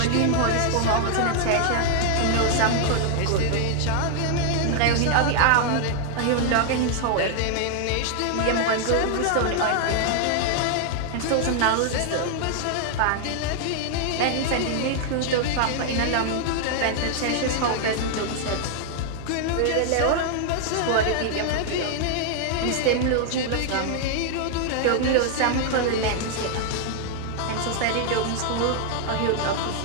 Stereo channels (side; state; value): both; different; correlation 0.00